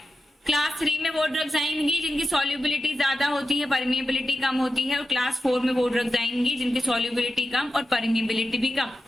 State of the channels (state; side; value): normal; both; correlation 0.91